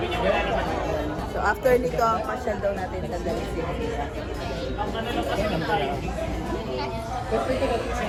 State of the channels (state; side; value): identical; both; correlation 1.00